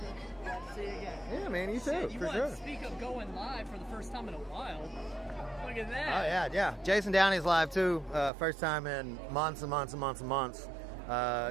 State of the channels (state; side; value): drops out; left; at 8.3 s